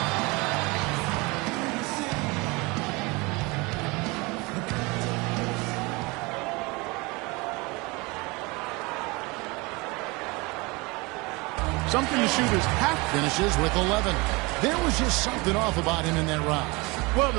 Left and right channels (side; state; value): left; quieter; 25.6 dB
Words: Something the shooters have. Finishes with 11. There was just something off about him in that round. Well,